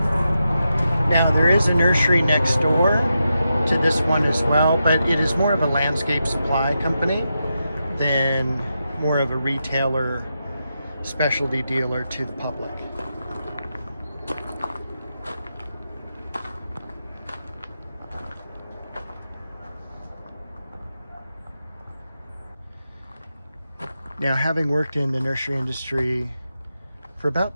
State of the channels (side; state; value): both; inverted; correlation -0.87